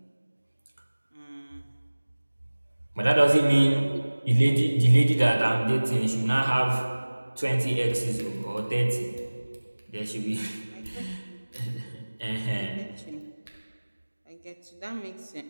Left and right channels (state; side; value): inverted; both; correlation -1.00